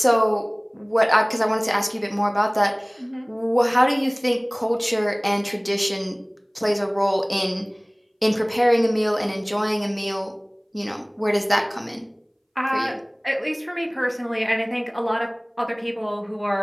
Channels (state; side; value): identical; both; correlation 1.00